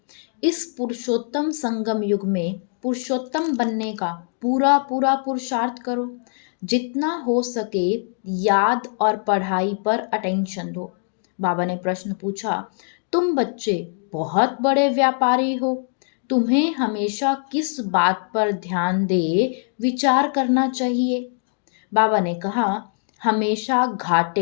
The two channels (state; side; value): silent; right; 64 dB below the other